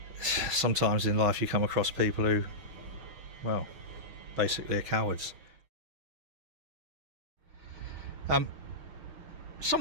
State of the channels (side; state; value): left; late; 6.2 ms